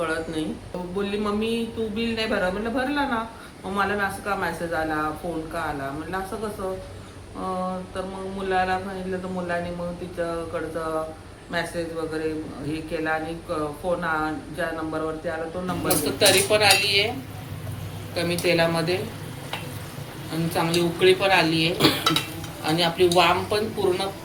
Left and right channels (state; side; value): identical; both; correlation 1.00